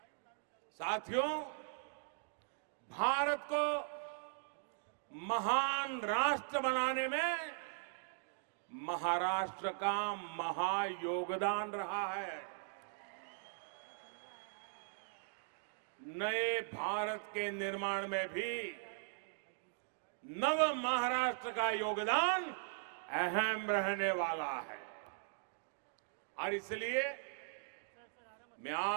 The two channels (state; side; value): silent; left; digital silence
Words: साथियों, भारत को महान राष्ट्र बनाने में महाराष्ट्र का महायोगदान रहा है। नए भारत के निर्माण में भी नव महाराष्ट्र का योगदान अहम रहने वाला है। और इसलिए मैं